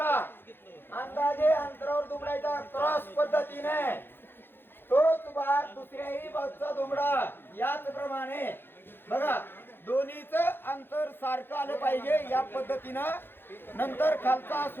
अंदाजे अंतरावर दुमडायचा क्रॉस पद्धतीने तोच भाग दुसऱ्याही बाजूचा दुमडा याच प्रमाणे बघा दोन्हीच अंतर सारखं आलं पाहिजे या पद्धतीनं नंतर खालचा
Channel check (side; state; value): right; late; 0.10 ms